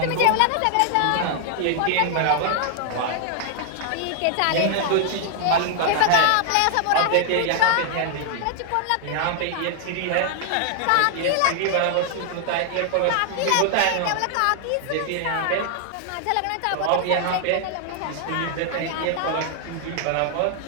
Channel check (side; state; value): both; different; correlation 0.00